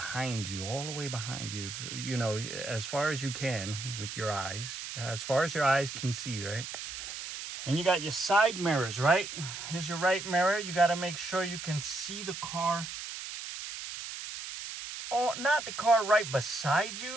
you, all the way behind you, as far as you can with your eyes, as far as your eyes can see, right? And you got your side mirrors, right? Here's your right mirror. You got to make sure you can see the car. Oh, not the car right beside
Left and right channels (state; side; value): noise; right; hiss, 8 dB below the sound